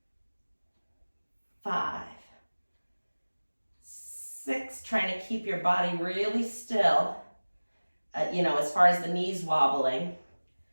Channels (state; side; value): inverted; both; correlation -1.00